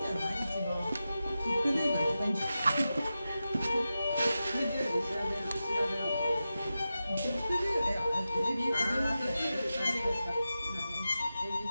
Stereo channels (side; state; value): both; inverted; correlation -0.92